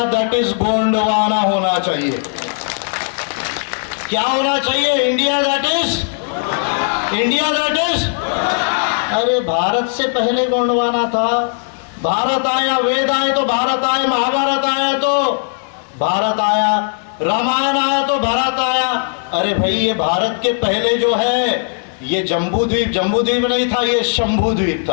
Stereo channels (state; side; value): silent; right; digital silence